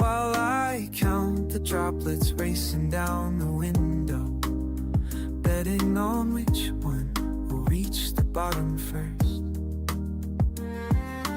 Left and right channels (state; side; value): identical; both; correlation 1.00